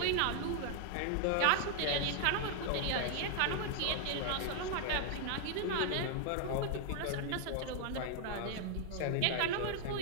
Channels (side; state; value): both; different; correlation 0.00